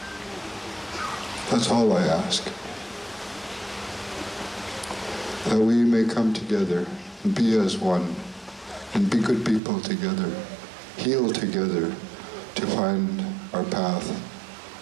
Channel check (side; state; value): left; drops out; at 9.6 s